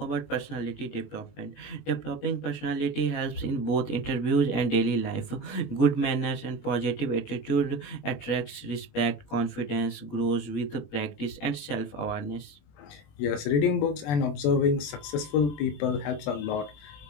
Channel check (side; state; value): right; late; 21 ms